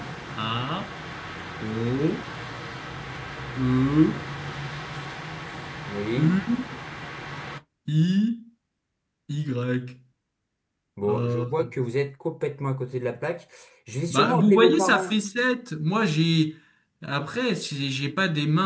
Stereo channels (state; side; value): identical; both; correlation 1.00